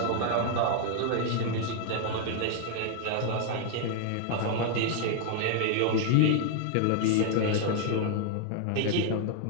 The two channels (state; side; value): different; both; correlation 0.00